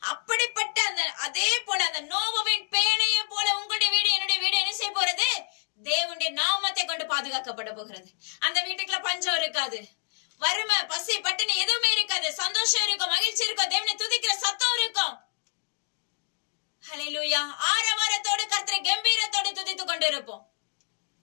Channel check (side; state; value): right; silent; digital silence